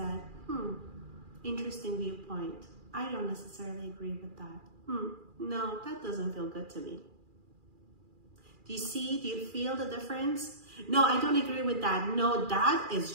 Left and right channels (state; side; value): late; left; 2.4 ms